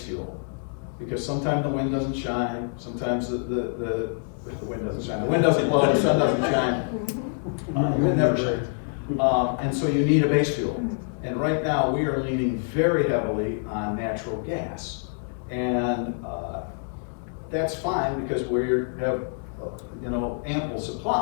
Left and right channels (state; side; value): silent; right; 61 dB below the other